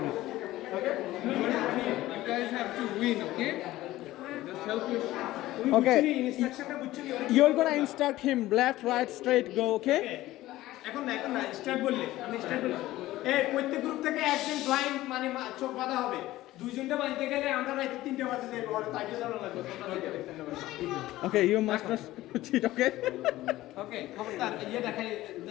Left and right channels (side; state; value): right; quieter; 16.3 dB